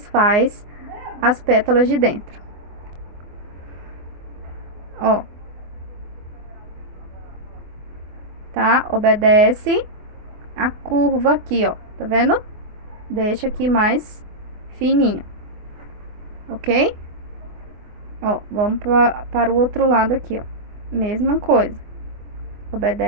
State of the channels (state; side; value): late; left; 24 ms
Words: faz as pétalas de dentro. Ó. Tá? Obedece a curva aqui, ó. Tá vendo? Deixa aqui mais fininho. Ok? Ó, vamos para o outro lado aqui, ó. Mesma coisa.